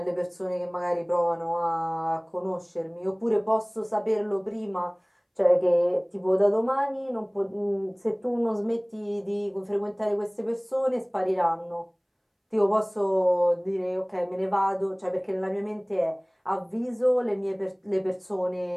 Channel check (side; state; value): both; identical; correlation 1.00